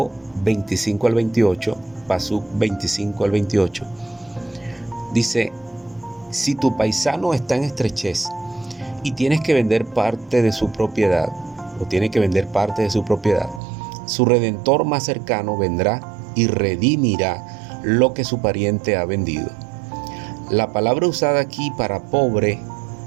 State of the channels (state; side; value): drops out; left; at 13.6 s